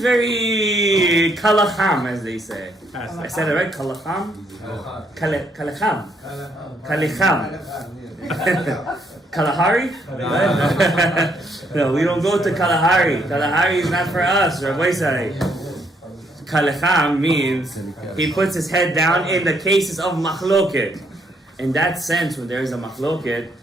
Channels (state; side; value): normal; both; correlation 0.72